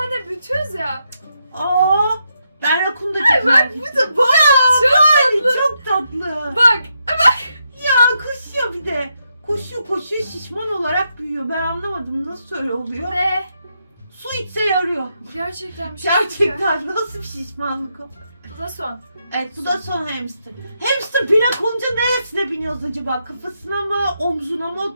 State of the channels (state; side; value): inverted; both; correlation -0.81